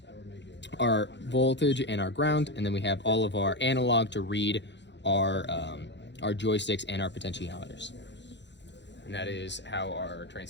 our voltage and our ground, and then we have all of our analog to read our joysticks and our potentiometers. And that is how our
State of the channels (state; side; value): late; right; 0.52 ms